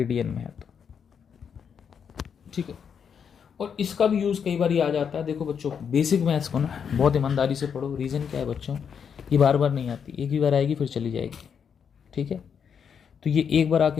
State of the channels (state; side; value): quieter; right; 7.2 dB